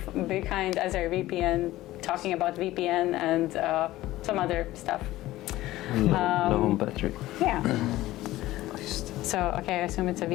AzireVPN, talking about VPN and some other stuff. Low battery. Yeah. So I assume it's a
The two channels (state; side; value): quieter; right; 16.3 dB